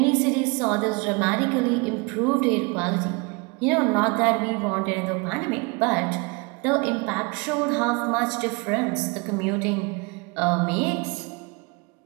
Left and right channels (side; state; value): left; quieter; 29.2 dB